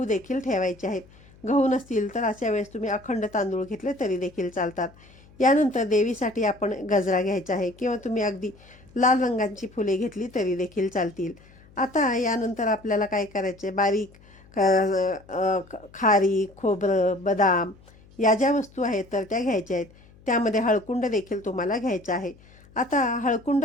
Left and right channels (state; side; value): noise; left; hum, 25 dB below the sound